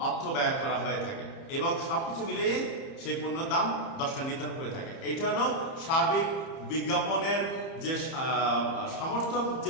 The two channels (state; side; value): late; right; 30 ms